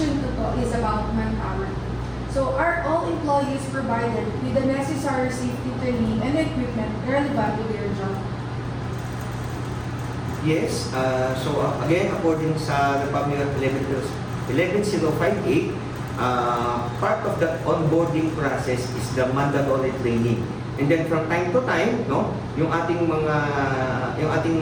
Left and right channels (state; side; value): identical; both; correlation 1.00